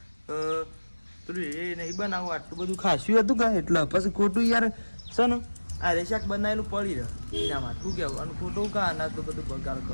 પેલું એ નહીં બનાવું આટલું બધું ખાસ્યું હતું કાં એટલે પછી ખોટું યાર છે ને આ રે શાક બનાવેલું પડી રહે એના માટે શું કહેવું અને ખોટું કાં અનાજ તો બધું બગાડ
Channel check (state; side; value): inverted; both; correlation -1.00